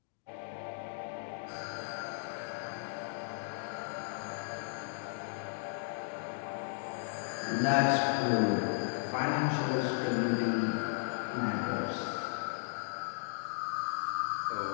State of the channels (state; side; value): silent; right; digital silence